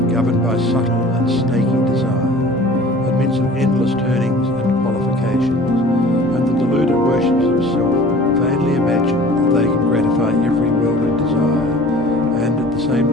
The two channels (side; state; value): both; normal; correlation 0.46